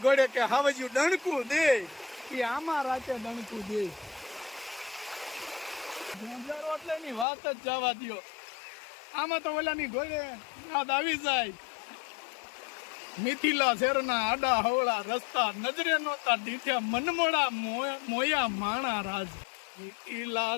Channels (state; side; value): drops out; right; at 7.2 s